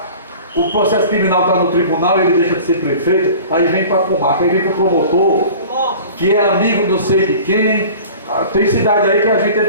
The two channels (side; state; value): both; inverted; correlation -0.42